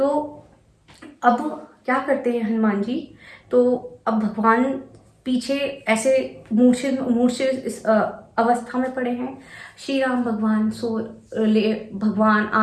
अब क्या करते हैं हनुमान जी, तो अब भगवान पीछे ऐसे मूर्छित अवस्था में पड़े हैं। श्री राम भगवान भगवान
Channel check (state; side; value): identical; both; correlation 1.00